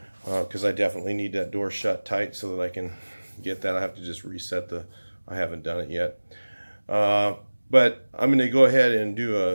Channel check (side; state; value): both; inverted; correlation -1.00